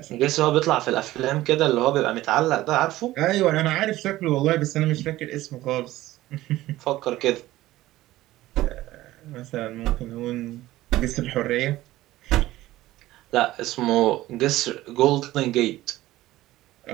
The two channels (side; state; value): left; quieter; 16.3 dB